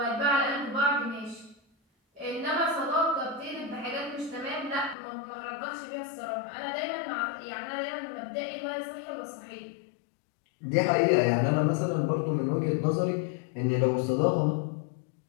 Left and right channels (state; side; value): drops out; right; at 5.0 s